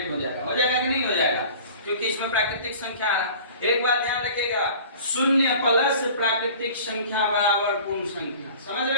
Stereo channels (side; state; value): both; inverted; correlation -0.44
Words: हो जाएगा कि नहीं हो जाएगा? क्योंकि इसमें प्राकृतिक संख्या आ रहा। एक बात ध्यान रखिएगा, शून्य प्लस प्राकृतिक संख्या बराबर पूर्ण संख्या। समझ